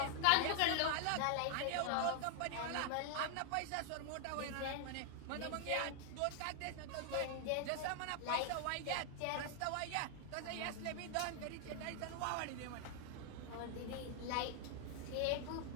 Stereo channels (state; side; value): different; both; correlation 0.00